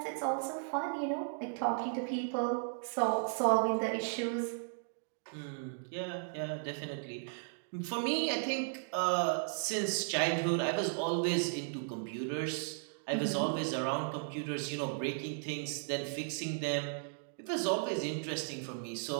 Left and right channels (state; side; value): silent; left; digital silence